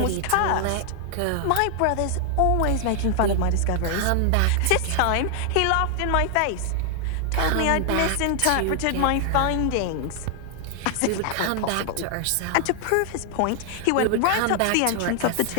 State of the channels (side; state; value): both; different; correlation 0.00